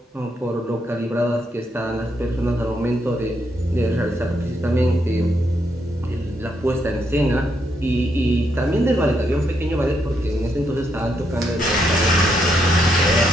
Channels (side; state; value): both; normal; correlation 0.77